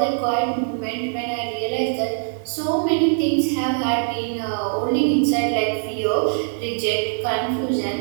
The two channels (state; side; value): silent; left; digital silence